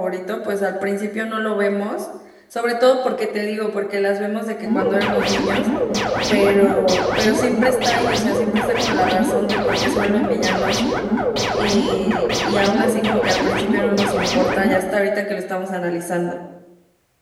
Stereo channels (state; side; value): identical; both; correlation 1.00